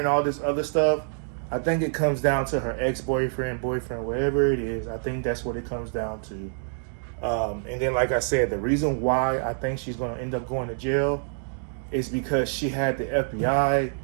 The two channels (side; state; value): left; silent; digital silence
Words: all this other stuff, I think it comes down to her ex-boyfriend, boyfriend, whatever it is. I think that's what it comes down to. And then, like I said, the reason why I think she's going to end up going to jail is because she had the FBI,